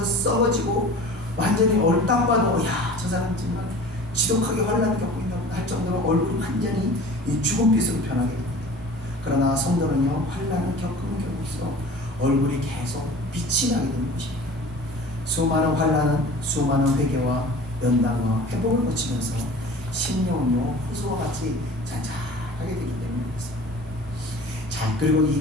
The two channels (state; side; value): normal; both; correlation 0.42